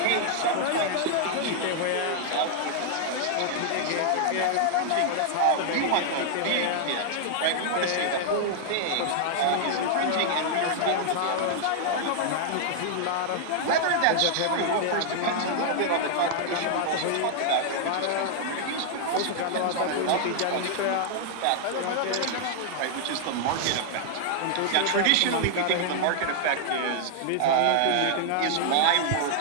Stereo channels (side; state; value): both; different; correlation -0.01